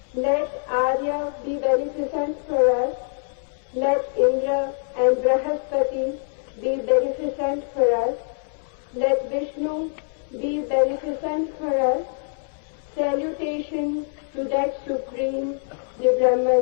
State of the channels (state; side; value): silent; right; digital silence